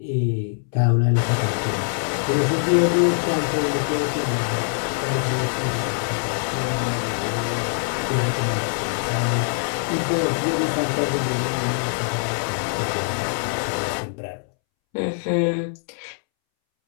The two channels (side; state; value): right; silent; 63 dB below the other